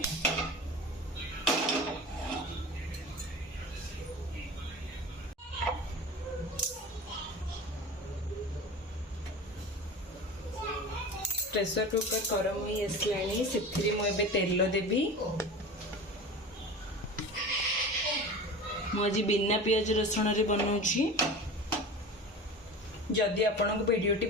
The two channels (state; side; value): normal; both; correlation 0.33